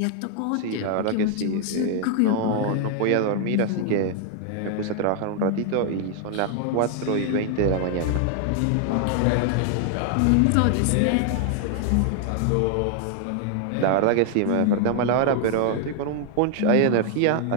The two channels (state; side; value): different; both; correlation 0.00